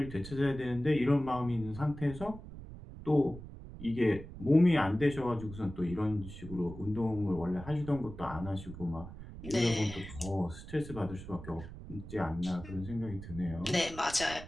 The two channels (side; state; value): right; noise; rumble, 13 dB below the sound